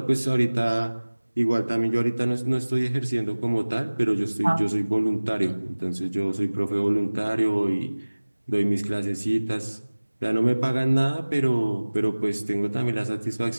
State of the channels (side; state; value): both; inverted; correlation -1.00